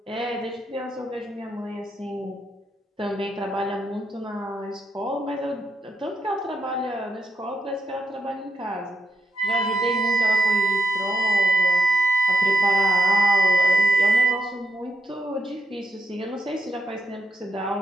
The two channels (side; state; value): both; normal; correlation 0.81